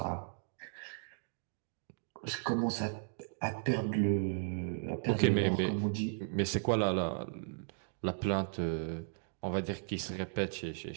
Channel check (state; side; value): silent; left; digital silence